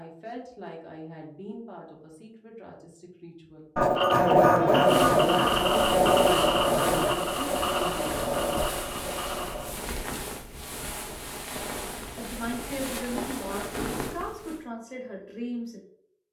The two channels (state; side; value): identical; both; correlation 1.00